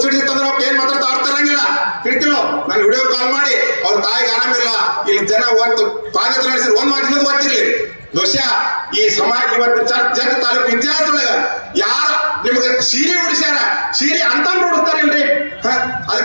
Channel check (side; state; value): both; inverted; correlation -1.00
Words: ಅವ್ರು ಏನ್ ಮಾತಾಡ್ತಾ ಆಡ್ತಾರಂಗಿಲ್ಲ. ತಿಳಿತಿಲೋ? ನಾನು ವಿಡಿಯೋ ಕಾಲ್ ಮಾಡಿ ಅವ್ರ ತಾಯಿಗೆ ಆರಾಮಿಲ್ಲ, ಇಲ್ಲಿ ಜನ ಒಂದು ಪಾದಯಾತ್ರೆ ನಡೆಸಿದ್ರು, ಒಂದ್ ಮಾತು ಇನ್ನೊಂದು ಗೊತ್ತಿರ್ಲಿ. ಬಹುಶಃ ಈ ಸಮಾಜ ಇವತ್ತು ಜಗ್ ತಾಲೂಕು ಇತಿಹಾಸದೊಳಗ ಯಾರ ನಿಮ್ಗೆ ಸೀರೆ ಉಡಿಸ್ಯಾರ, ಸೀರೆ ಅಂತ ಉಡಿಸ್ತಾರಿಲ್ರಿ.